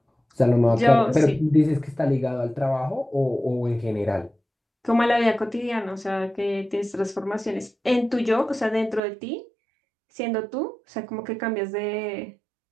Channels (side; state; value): left; drops out; at 9.0 s